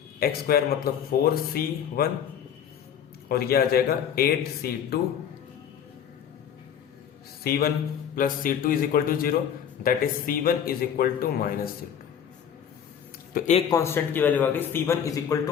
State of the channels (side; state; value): right; quieter; 8.6 dB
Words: एक्स स्क्वायर मतलब 4c1, और ये आ जाएगा 8c2, c1 plus c2 is equal to 0, that is c1 is equal to minus c2। तो एक कांस्टेंट की वैल्यू आ गई c1 is equal to